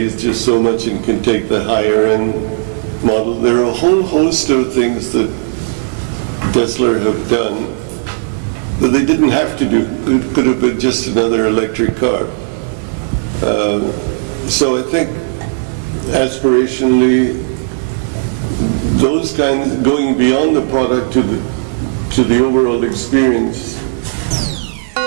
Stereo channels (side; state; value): left; silent; digital silence